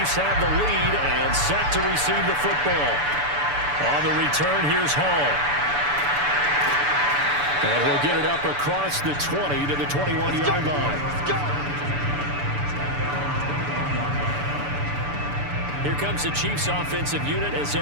have the lead and set to receive the football. On the return, here's Hall. And he'll get it up across the 20 to the 21-yard line. Here comes the Chiefs offensive unit as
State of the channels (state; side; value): late; left; 6.9 ms